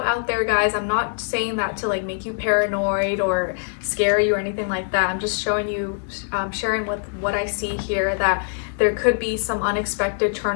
there, guys. I'm not saying that to like make you paranoid or scare you or anything like that. I'm just showing you, sharing with what I see here, that there could be some unexpected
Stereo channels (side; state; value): right; silent; digital silence